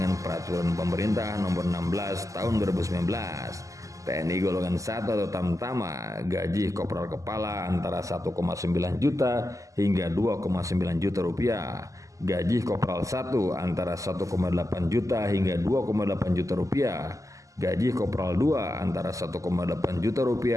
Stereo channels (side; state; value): left; late; 0.16 ms